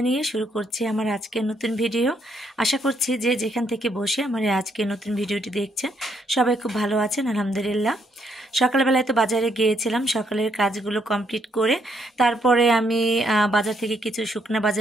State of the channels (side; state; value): both; normal; correlation 0.73